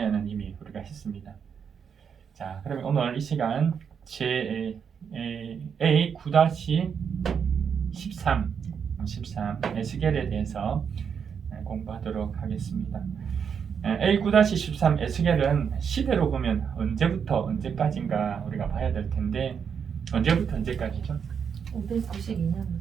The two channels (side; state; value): left; quieter; 7.0 dB